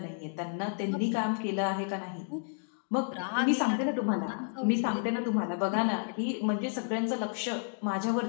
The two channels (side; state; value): right; silent; 56 dB below the other